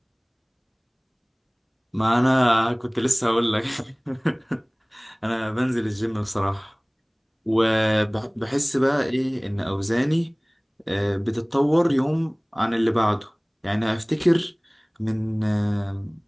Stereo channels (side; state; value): both; identical; correlation 1.00